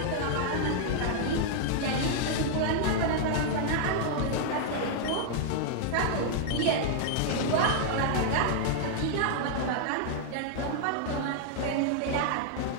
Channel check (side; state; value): both; different; correlation -0.01